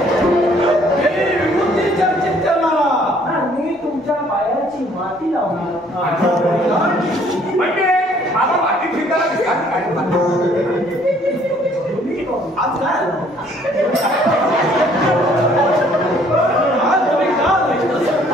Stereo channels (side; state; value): both; normal; correlation 0.61